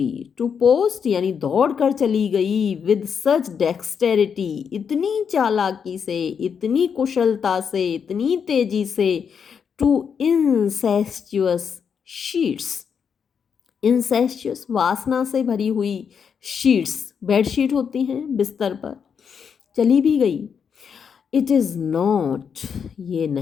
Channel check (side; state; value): right; quieter; 6.9 dB